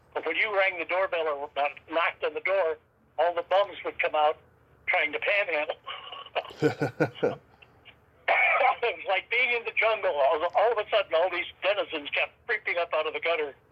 But when you rang the doorbell or knocked on the door, all the bums would come out trying to panhandle. It was like being in the jungle. All of a sudden, all these denizens kept creeping up out of the gutter.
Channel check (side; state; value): both; identical; correlation 1.00